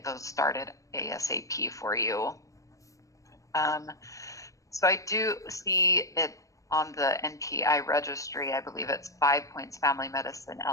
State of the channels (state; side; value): late; right; 0.16 ms